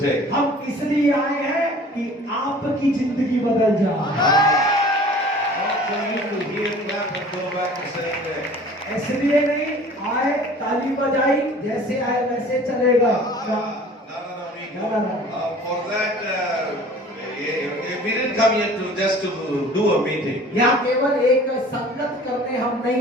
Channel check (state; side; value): normal; both; correlation 0.47